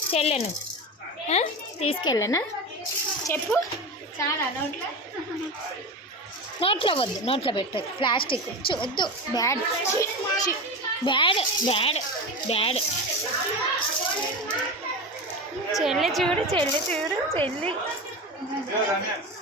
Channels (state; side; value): normal; both; correlation 0.24